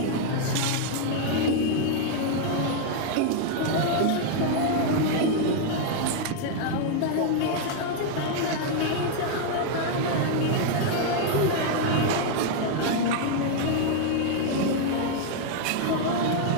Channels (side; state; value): both; different; correlation 0.00